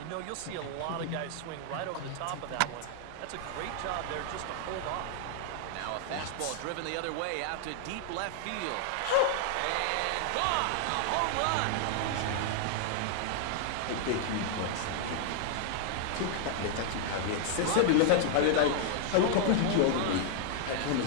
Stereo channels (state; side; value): different; both; correlation 0.00